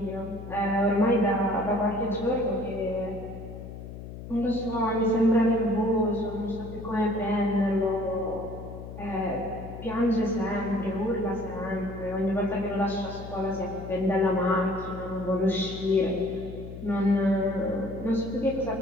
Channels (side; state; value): left; noise; hum, 11 dB below the sound